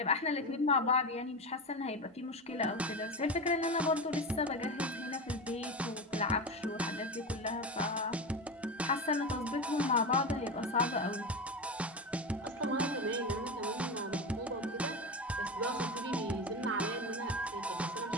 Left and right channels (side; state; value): both; normal; correlation 0.21